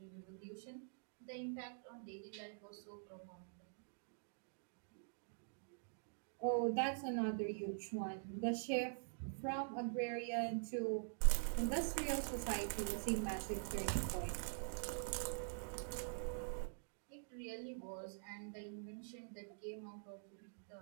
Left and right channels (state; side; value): silent; left; digital silence